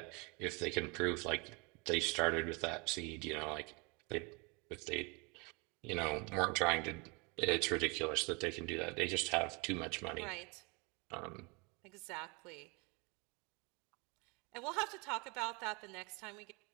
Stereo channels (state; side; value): quieter; left; 30.0 dB